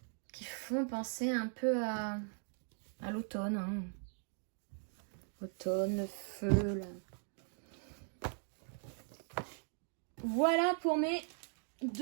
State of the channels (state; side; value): silent; left; 52 dB below the other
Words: Qui font penser un peu à l'automne. Hein. Automne, feu, là. Voilà pour mes